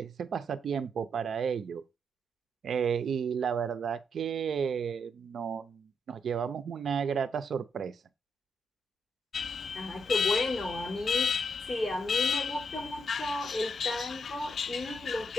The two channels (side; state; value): both; normal; correlation 0.78